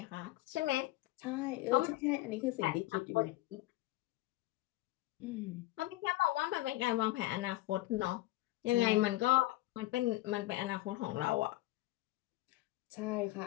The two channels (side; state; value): right; quieter; 18.0 dB